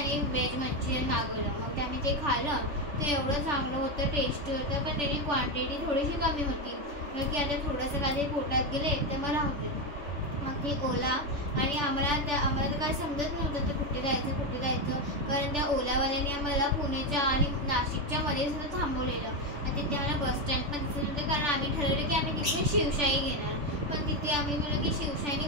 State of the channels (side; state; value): left; late; 3.4 ms